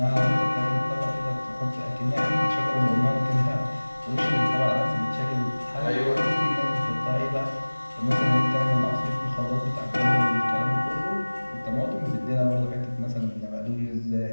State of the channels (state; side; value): inverted; both; correlation -1.00